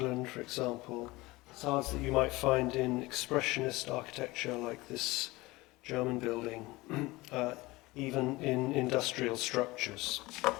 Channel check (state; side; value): quieter; right; 21.0 dB